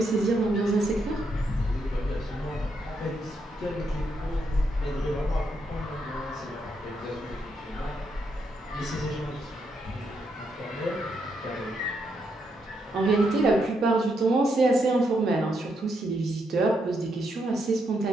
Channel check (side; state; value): both; normal; correlation 0.79